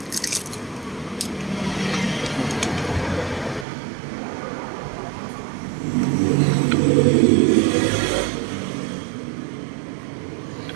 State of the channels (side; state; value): left; drops out; at 3.7 s